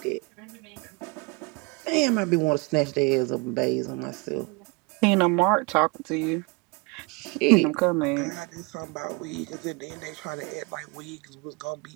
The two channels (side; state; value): left; quieter; 28.5 dB